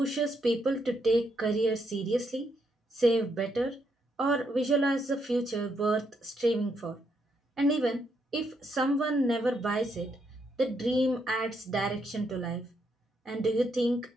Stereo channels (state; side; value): normal; both; correlation 0.77